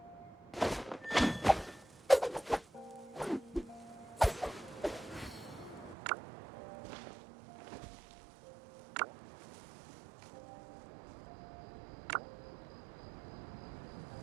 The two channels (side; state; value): left; drops out; at 6.0 s